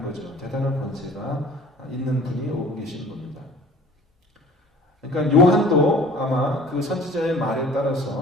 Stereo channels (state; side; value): normal; both; correlation 0.47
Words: 거죠. 대단한 권세가 있는 분이 오고 계신 겁니다. 그러니까 요한도 아마 그 선지자의 말에